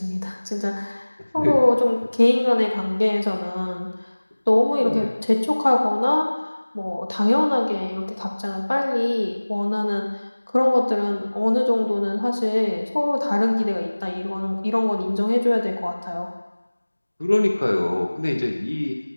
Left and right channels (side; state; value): both; inverted; correlation -1.00